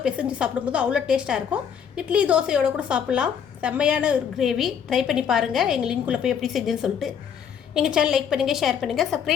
பிசைஞ்சு சாப்பிடும்போது அவ்வளோ டேஸ்ட்டாக இருக்கும். இட்லி தோசையோடு கூட சாப்பிட்லாம். செம்மையான ஒரு கிரேவி. ட்ரை பண்ணி பாருங்கள். எங்கள் லிங்க்குள்ளே போய் எப்படி செஞ்சுன்னு சொல்லிட்டு எங்கள் சேனல் லைக் பண்ணுங்கள், ஷேர் பண்ணுங்கள்,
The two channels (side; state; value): right; quieter; 7.8 dB